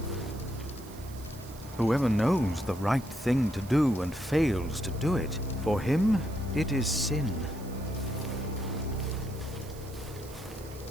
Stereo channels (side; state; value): right; noise; hiss, 20 dB below the sound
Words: Whoever knows the right thing to do and fails to do it, for him it is sin.